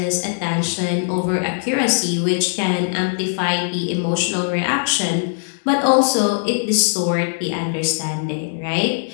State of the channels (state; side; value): silent; right; digital silence